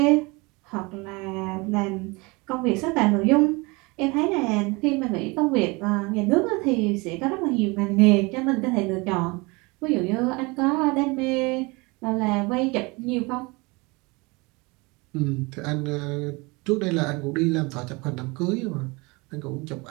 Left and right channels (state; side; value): quieter; left; 26.0 dB